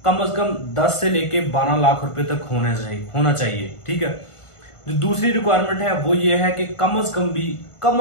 कम से कम 10 से लेके 12 लाख रुपए तक होना चाहिए। ठीक है, जो दूसरी रिक्वायरमेंट है वो ये है कि कम से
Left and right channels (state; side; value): late; right; 1.5 ms